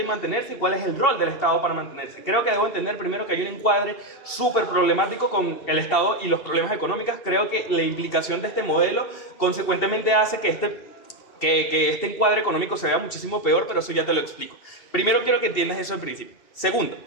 mantenerse y cuál es el rol del Estado para mantenerse. Creo que debo entender primero que hay un encuadre súper problemático con el Estado y los problemas económicos. Creo que la implicación de este modelo consecuentemente hace que este encuadre económico se vea muchísimo peor, pero eso ya te lo explico. Primero quiero que entiendas eso al principio. Segundo,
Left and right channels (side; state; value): right; late; 2.7 ms